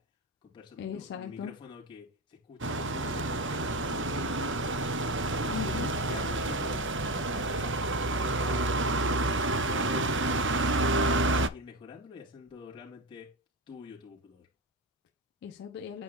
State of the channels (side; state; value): both; normal; correlation 0.19